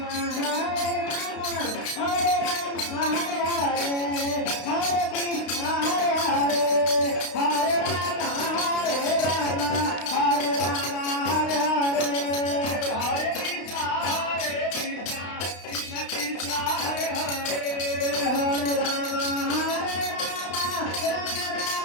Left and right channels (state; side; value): late; right; 32 ms